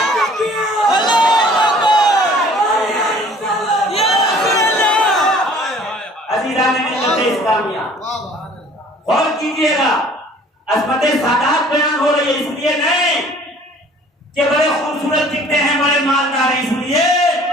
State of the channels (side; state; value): both; normal; correlation 0.52